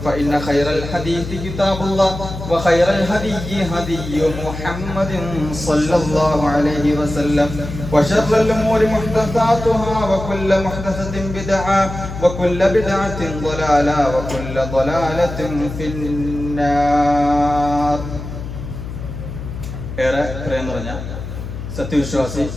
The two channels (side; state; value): left; noise; hum, 9 dB below the sound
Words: فإن خير الحديث كتاب الله وخير الهدي هدي محمد صلى الله عليه وسلم وشر الأمور محدثاتها وكل محدثة بدعة وكل بدعة ضلالة وكل ضلالة في النار. ഏറെ പ്രേം നിറഞ്ഞ